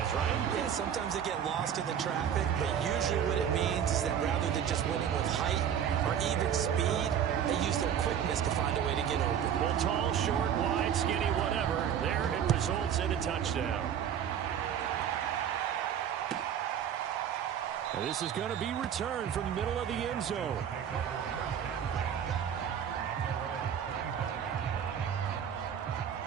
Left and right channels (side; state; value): left; quieter; 8.8 dB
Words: right? Yeah, sometimes they get lost in the traffic, but usually what it means is that rather than just winning with height or even speed, they use their quickness to find a way to get open. Well, tall, short, wide, skinny, whatever, there it results in a touchdown. And this is going to be returned from the middle of the end zone.